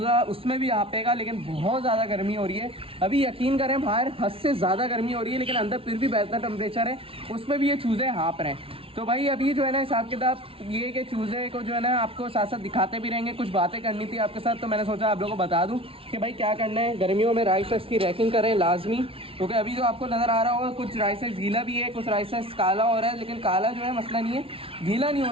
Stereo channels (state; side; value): late; left; 0.26 ms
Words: उसमें भी हाँपेगा। लेकिन बहुत ज़्यादा गर्मी हो रही है अभी, यकीन करें बाहर हद से ज़्यादा गर्मी हो रही है, लेकिन अंदर फिर भी बेहतर टेम्परेचर है, उसमें भी ये चूज़े हाँप रहे हैं। तो भाई अभी जो है ना हिसाब किताब ये कि चूज़े को जो है ना आपको साथ साथ दिखाते भी रहेंगे, कुछ बातें करनी थी आपके साथ, तो मैंने सोचा आप लोगों को बता दूं कि भाई क्या करना है। गर्मियों में राइस की रैकिंग करें लाजमी, क्योंकि अभी जो आपको नज़र आ रहा होगा कुछ राइस गीला भी है, कुछ राइस काला हो रहा है, लेकिन काला जो है मसला नहीं है, गीला नहीं